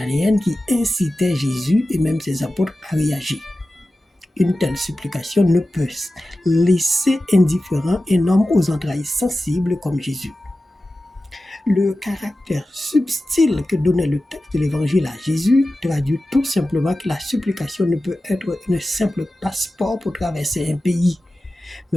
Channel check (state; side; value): normal; both; correlation 0.94